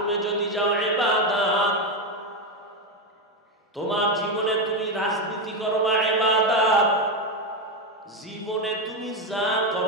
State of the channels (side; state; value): both; normal; correlation 0.10